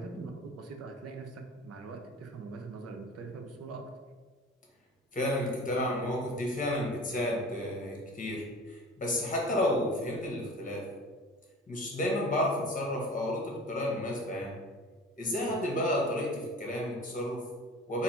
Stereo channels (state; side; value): normal; both; correlation 0.39